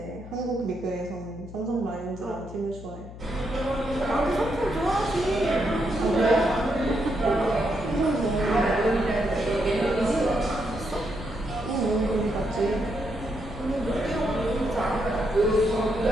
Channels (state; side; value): noise; left; hum, 14 dB below the sound